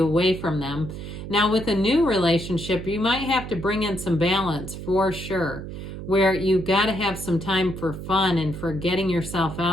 away from them. Now, with a new relationship, you might have to bring in some balance for sure, where you've got to have some time for fun and for getting yourself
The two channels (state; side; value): noise; right; hum, 9 dB below the sound